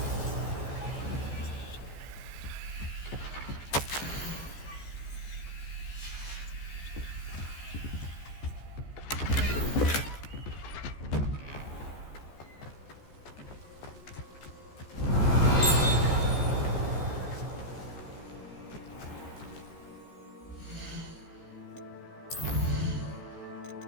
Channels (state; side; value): late; right; 14 ms